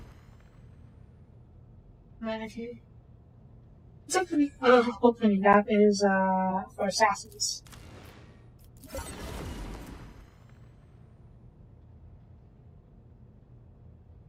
Okay. It's opening that is for assassins.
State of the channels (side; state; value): both; identical; correlation 1.00